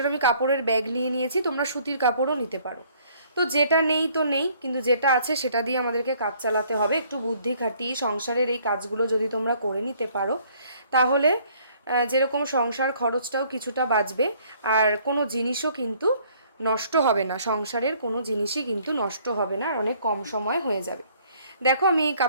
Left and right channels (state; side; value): inverted; both; correlation -0.61